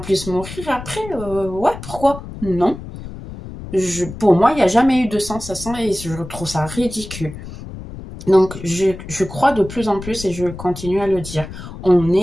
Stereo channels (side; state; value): left; noise; rumble, 12 dB below the sound